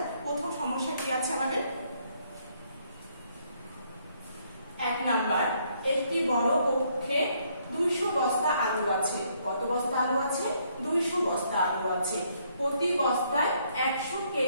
প্রথম সমস্যা কি আছে আমাদের। 1 নাম্বার, একটি বড় কক্ষে 200 বস্তা আলু আছে। কত বস্তা আলু আছে? 200 বস্তা আলু আছে। প্রতি বস্তায় 100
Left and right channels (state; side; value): inverted; both; correlation -0.69